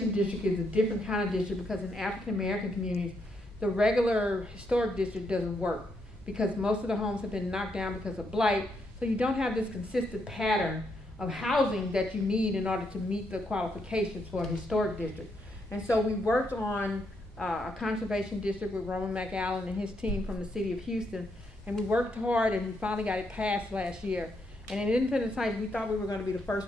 district is a different kind of district because in African American communities, the regular historic district doesn't work because most of the homes have been knocked down because of blight. So you don't have this consistent pattern of housing that you need in order to meet the qualifications for a historic district. And so we worked on a conservation district with Roman McAllen and his team from the city of Houston. And we worked hard and we finally got it passed last year. And in Independence Heights, we thought we were going to be the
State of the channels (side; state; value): both; normal; correlation 0.78